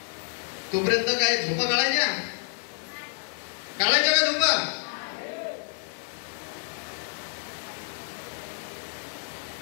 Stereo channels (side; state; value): right; silent; digital silence